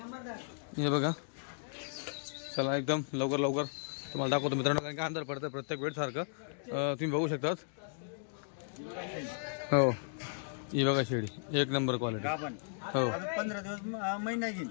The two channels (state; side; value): silent; right; digital silence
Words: हे बघा चला एकदम लवकर लवकर तुम्हाला दाखवतो मित्रांनो कारण की अंधार पडतं प्रत्येक वेळ सारखं तुम्ही बघू शकतात. हो ही बघा शेळी एक नंबर क्वालिटी. हो 15 दिवस महिना घेईन.